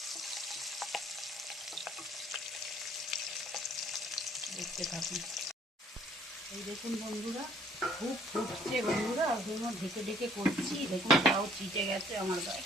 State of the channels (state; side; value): normal; both; correlation 0.61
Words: দেখতে থাকুন। এই দেখুন বন্ধুরা খুব ফুটছে বন্ধুরা, ওই জন্য ঢেকে ঢেকে করছি। দেখুন তাও চিটে গেছে আমার গায়ে।